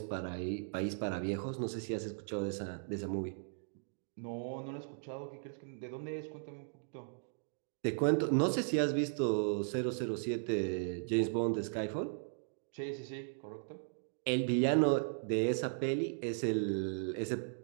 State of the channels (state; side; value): silent; left; digital silence